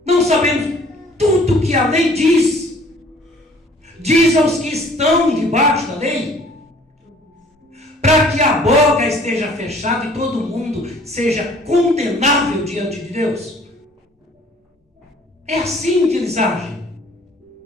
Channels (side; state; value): both; normal; correlation 0.54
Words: Não sabemos tudo que a lei diz aos que estão debaixo da lei, para que a boca esteja fechada e todo mundo seja condenável diante de Deus. É assim que eles agem.